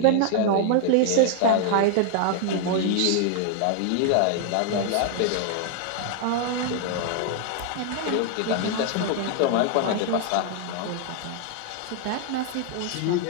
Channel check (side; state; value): both; different; correlation 0.00